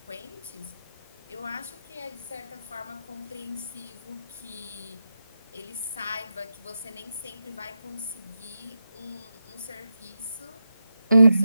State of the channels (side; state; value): both; inverted; correlation -0.88